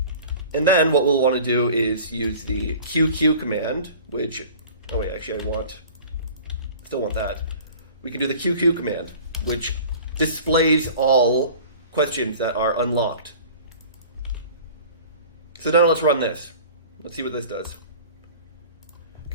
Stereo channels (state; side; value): inverted; both; correlation -0.43